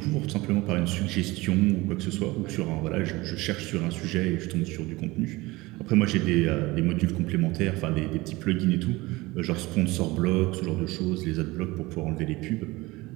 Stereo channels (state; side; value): quieter; left; 21.3 dB